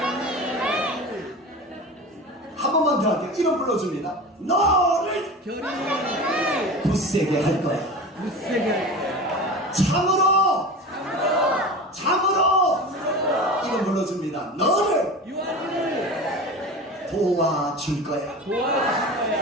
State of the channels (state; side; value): normal; both; correlation 0.32